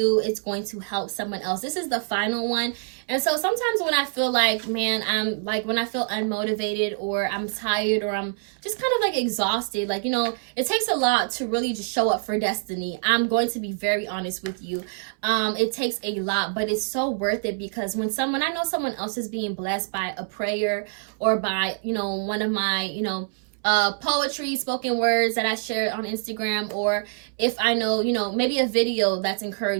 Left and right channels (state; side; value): silent; left; 62 dB below the other